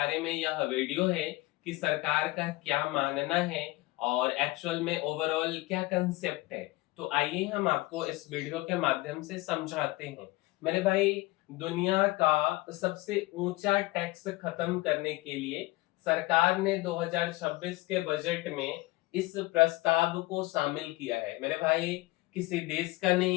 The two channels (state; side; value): quieter; right; 20.6 dB